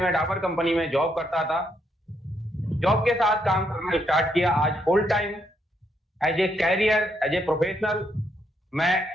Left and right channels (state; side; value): normal; both; correlation 0.76